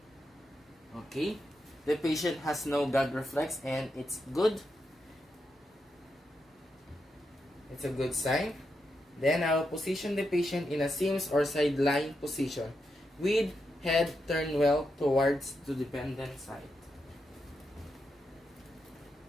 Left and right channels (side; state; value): both; normal; correlation 0.85